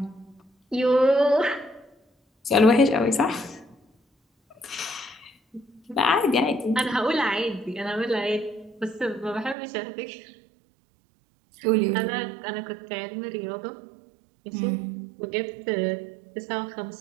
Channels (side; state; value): left; drops out; at 9.6 s